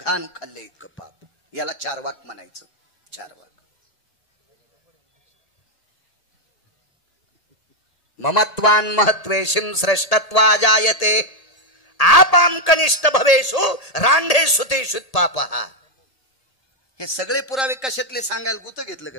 खाल्ले इतकं पाप. याला चारवाक म्हणायचं. चारवाक. ममत्वान महत्वेशिम श्रेष्ठत्वा जायते आपाम कनिष्ठ भवेशु रांढेषु तेषु पापः. हे सगळे पुरावे कशातले सांगायला गुत घेतलं का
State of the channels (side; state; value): right; late; 1.8 ms